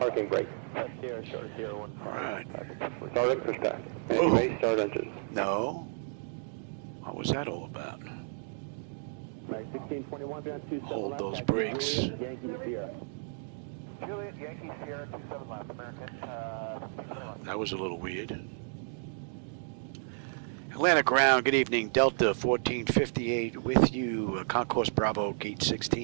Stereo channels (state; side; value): silent; left; digital silence